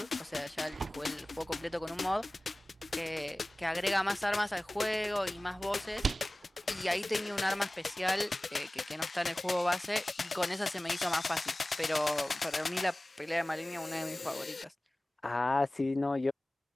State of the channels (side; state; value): both; normal; correlation 0.98